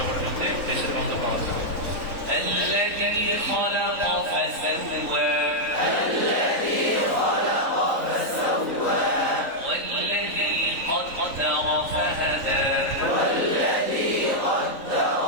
পর্যন্ত দেশের মধ্যে পাওয়া যাবে। الذي خلق فسوى الذي خلق فسوى والذي قدر فهدى والذي قدر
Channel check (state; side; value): late; left; 3.8 ms